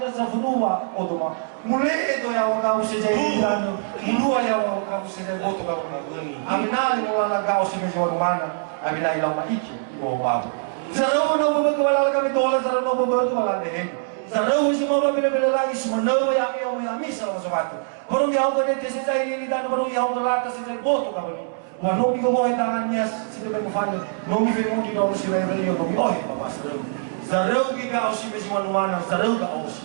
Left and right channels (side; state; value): left; silent; digital silence